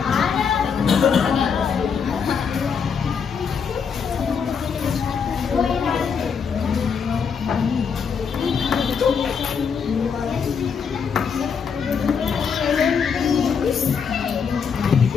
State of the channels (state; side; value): quieter; right; 6.4 dB